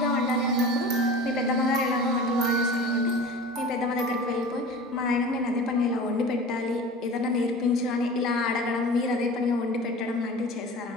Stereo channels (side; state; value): both; normal; correlation 0.37